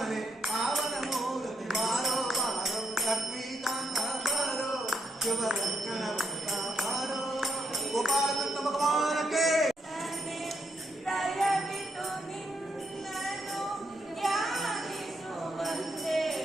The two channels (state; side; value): normal; both; correlation 0.80